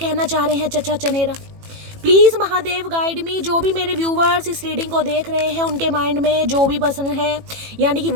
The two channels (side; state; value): left; late; 18 ms